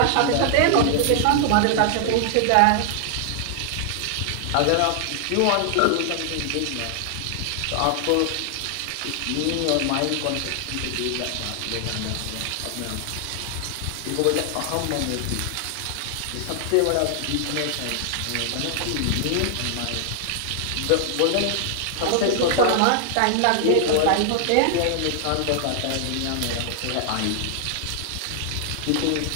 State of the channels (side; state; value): both; different; correlation 0.00